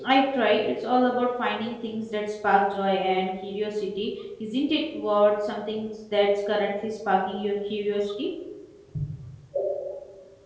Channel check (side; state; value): both; identical; correlation 1.00